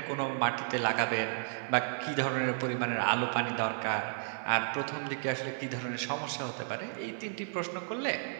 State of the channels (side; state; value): left; silent; 56 dB below the other